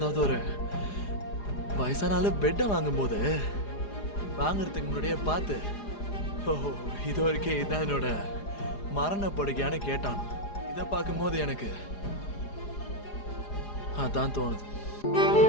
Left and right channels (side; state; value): right; late; 4.9 ms